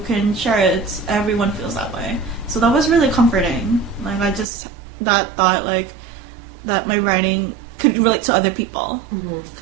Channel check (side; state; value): left; drops out; at 4.5 s